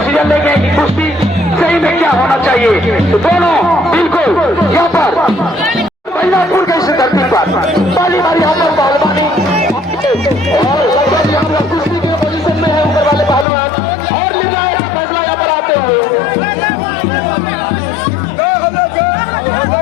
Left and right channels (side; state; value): right; drops out; at 13.5 s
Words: लेंगे कि कुश्ती सही में क्या होना चाहिए। तो दोनों बिल्कुल यहाँ पर महिलापुर के इस धरती पर पहली बार यहाँ पर पहलवानी और लगभग यहाँ पर कुश्ती के पोजीशन में है ऊपर वाले पहलवान और निर्णायक का फैसला यहाँ पर आते हुए